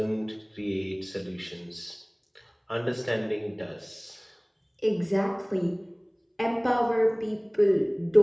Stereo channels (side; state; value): both; identical; correlation 1.00